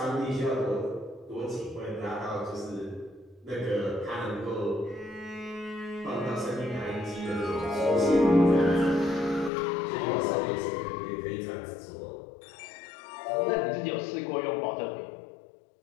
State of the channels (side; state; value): right; drops out; at 9.5 s